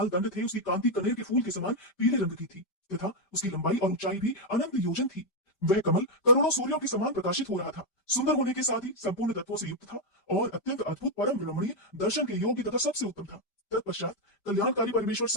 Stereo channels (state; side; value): late; right; 5.1 ms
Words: दंड थे। उसकी कांति कनेर के फूल के समान पीले रंग की थी तथा उसकी लंबाई और ऊंचाई भी अनंत योजन थी। वह कमल करोड़ों सूर्यों के समान प्रकाशित हो रहा था। सुंदर होने के साथ ही संपूर्ण तत्वों से युक्त था और अत्यंत अद्भुत परम रमणीय दर्शन के योग्य तथा सबसे उत्तम था। तत्पश्चात कल्याणकारी परमेश्वर